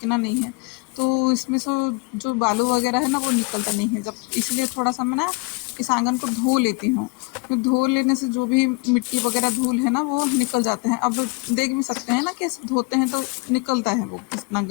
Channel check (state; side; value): quieter; right; 29.3 dB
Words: नहीं है, तो इसमें से जो बालू वगैरह है ना वो निकलता नहीं है जब, इसलिए थोड़ा सा मैं ना इस आंगन को धो लेती हूँ। तो धो लेने से जो भी मिट्टी वगैरह धूल है ना वो निकल जाते हैं। अब देख भी सकते हैं ना कैसे धोते हैं तो निकलता है वो कितना